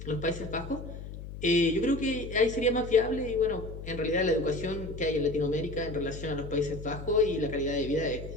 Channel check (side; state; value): left; noise; hum, 10 dB below the sound